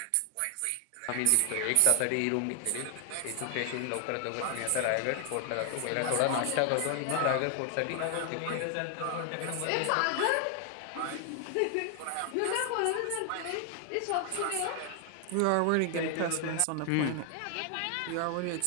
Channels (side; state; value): both; different; correlation 0.00